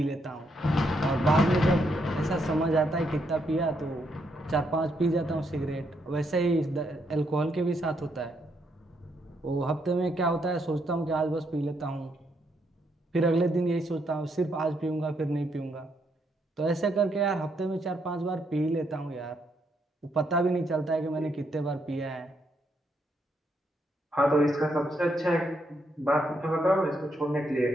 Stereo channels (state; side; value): normal; both; correlation 0.76